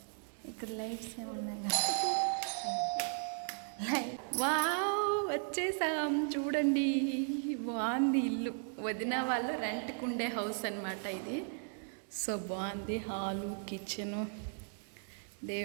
ఇక్కడ లైట్స్ ఏమున్నాయి. వావ్, వచ్చేసాం. చూడండి, బాగుంది ఇల్లు. వదిన వాళ్ళు రెంట్కి ఉండే హౌస్ అనమాట ఇది. సో బాగుంది. హాలు, కిచెను,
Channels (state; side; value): silent; left; 54 dB below the other